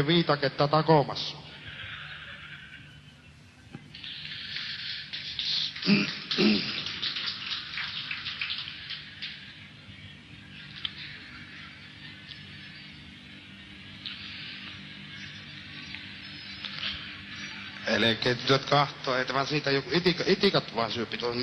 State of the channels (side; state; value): both; identical; correlation 1.00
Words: viitaketta takomassa. Elkeet tytöt kahtoo, että vaan siitä joku itikat vaan syöpi tuon